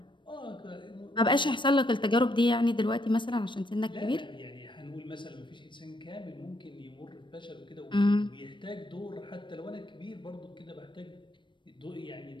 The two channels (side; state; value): right; late; 0.23 ms